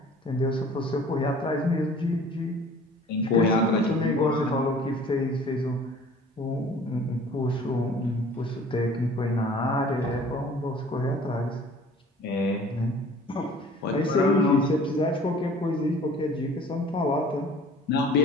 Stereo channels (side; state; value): both; normal; correlation 0.49